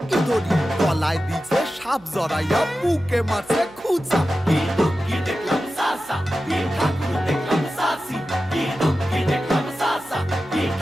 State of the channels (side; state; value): right; noise; hum, 26 dB below the sound